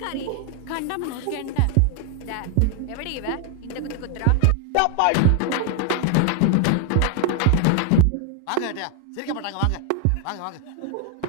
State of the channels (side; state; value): both; different; correlation 0.01